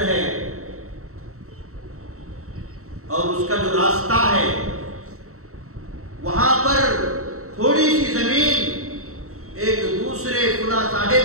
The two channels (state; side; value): late; left; 0.64 ms